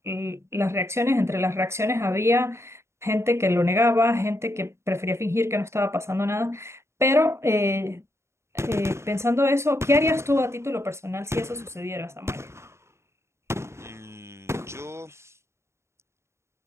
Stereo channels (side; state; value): left; late; 0.13 ms